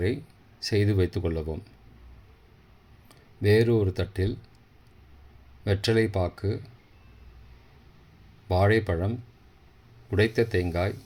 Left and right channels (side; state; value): both; identical; correlation 1.00